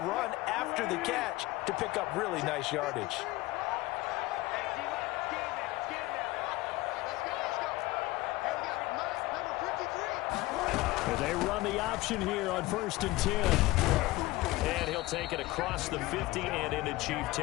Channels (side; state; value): right; quieter; 19.5 dB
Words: run after the catch to pick up really nice yardage. They run the option here on 1st and 10. And he'll take it across the 50 and into Chief